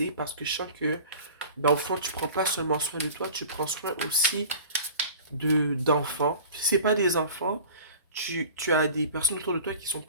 parce que je sens que, ben, au fond, tu prends pas seulement soin de toi, tu prends soin aussi d'enfants. C'est pas des enfants, tu as des personnes autour de toi qui sont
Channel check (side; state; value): both; inverted; correlation -0.42